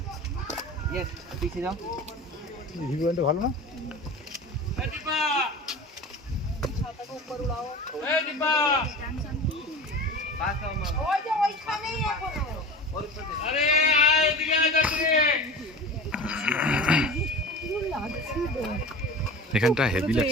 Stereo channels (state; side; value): normal; both; correlation 0.34